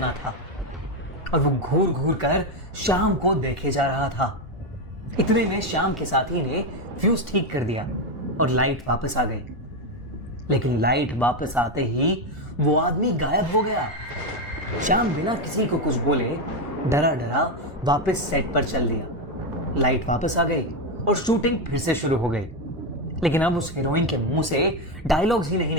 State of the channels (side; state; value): both; normal; correlation 0.09